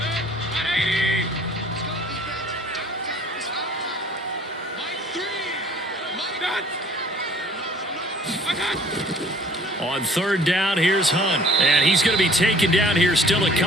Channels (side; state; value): both; normal; correlation 0.53